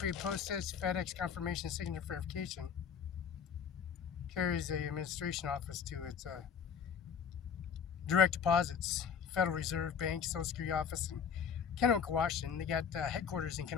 postage, FedEx confirmation signature verification carries the administration office to its direct deposits, Federal Reserve Bank, Social Security Office in Kennewick, Washington. They got headquarters in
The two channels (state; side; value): quieter; right; 7.1 dB